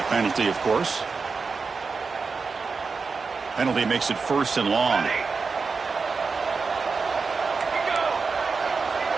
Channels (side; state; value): left; quieter; 4.7 dB